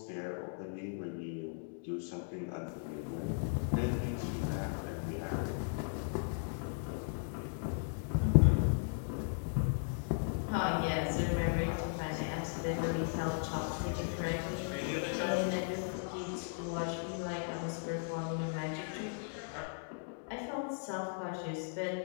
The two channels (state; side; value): silent; right; digital silence